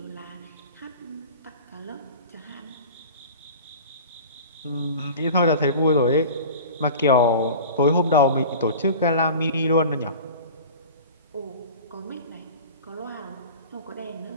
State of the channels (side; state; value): both; inverted; correlation -0.37